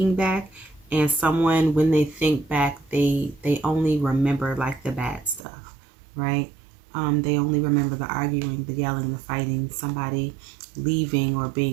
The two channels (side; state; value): left; drops out; at 5.4 s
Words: back, and someone, when they think back, they only remember like the bad stuff, right? They only remember the arguing, the yelling, the fighting, somebody leaving or